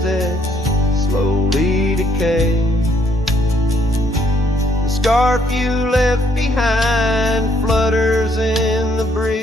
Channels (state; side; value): normal; both; correlation 0.68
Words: slowly decay. The scarf you left behind flutters in the